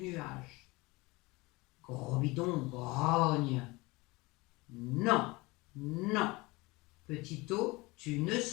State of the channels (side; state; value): right; quieter; 23.4 dB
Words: nuage. Gros bidon grogne. Non, non, Petit eau, tu ne